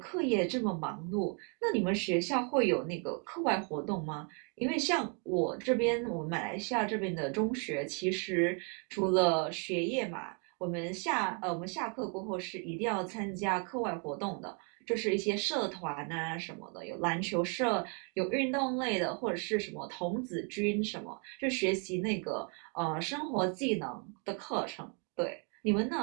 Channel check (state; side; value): quieter; left; 37.1 dB